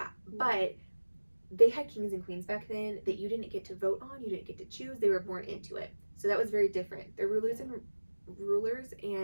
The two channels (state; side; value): inverted; both; correlation -1.00